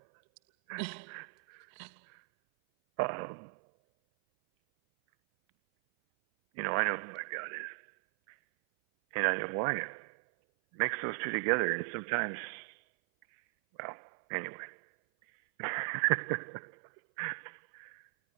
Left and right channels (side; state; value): left; silent; 54 dB below the other